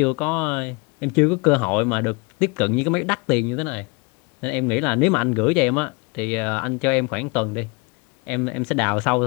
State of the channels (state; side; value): quieter; right; 29.7 dB